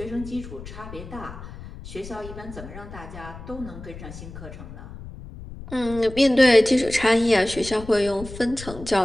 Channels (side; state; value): left; noise; rumble, 13 dB below the sound